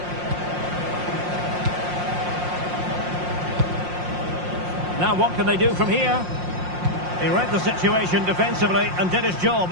Now what can they do from here? He read the situation defensively and did his job.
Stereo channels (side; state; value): left; late; 5.6 ms